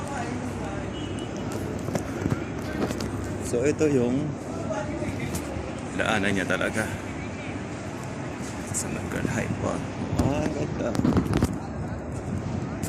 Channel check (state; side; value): identical; both; correlation 1.00